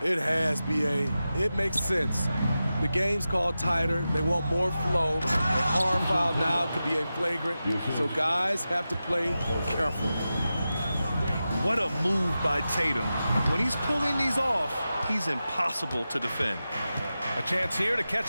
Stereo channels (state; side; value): inverted; both; correlation -0.93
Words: It has, B.A. It makes sense. The game's called tighter. They want more flow. A hard foul now could be a flagrant. So guys have to play careful. What a move by Tatum. When he's pulling these off, he's impossible to defend. A chance here to